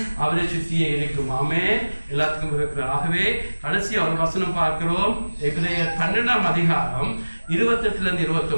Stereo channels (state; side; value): inverted; both; correlation -1.00